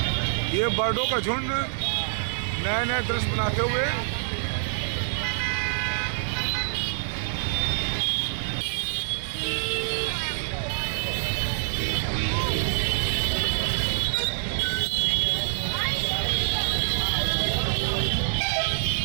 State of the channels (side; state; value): left; silent; 61 dB below the other